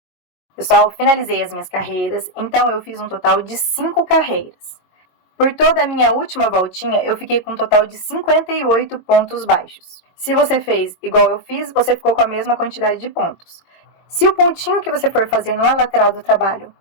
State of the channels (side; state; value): right; late; 22 ms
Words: Pessoal, finalizei as minhas carreiras, então eu fiz um total de 5 carreiras. Por toda a minha última voltinha, eu fiquei com um total de 58 pontos baixos. Se você fez igual eu fiz, você ficou com a mesma quantidade de pontos. Se o pontinho que você for fazer na lateral do trabalho